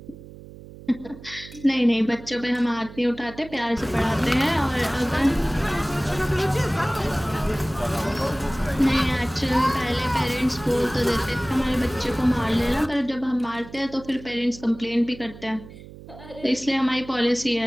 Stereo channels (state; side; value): noise; right; hum, 17 dB below the sound